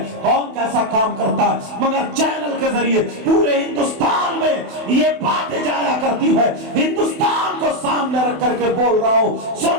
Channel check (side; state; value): left; late; 28 ms